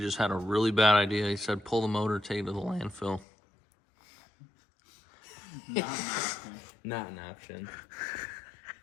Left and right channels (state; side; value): drops out; right; at 3.2 s